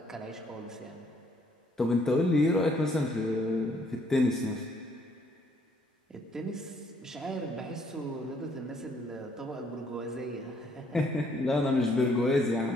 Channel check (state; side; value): normal; both; correlation 0.67